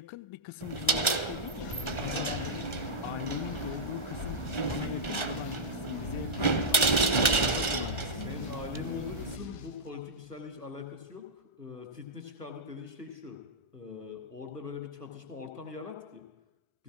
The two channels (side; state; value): right; late; 1.3 ms